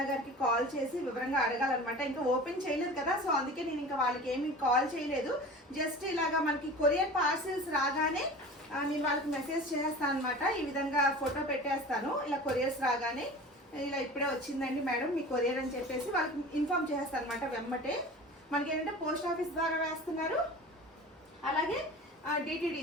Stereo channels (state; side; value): normal; both; correlation 0.37